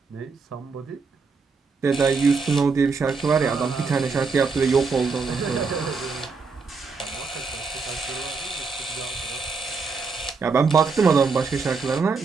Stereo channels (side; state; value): left; quieter; 4.8 dB